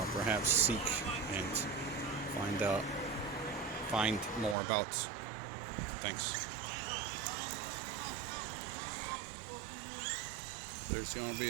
perhaps seek and find more about. Thanks. There's going to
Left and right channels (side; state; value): left; drops out; at 4.5 s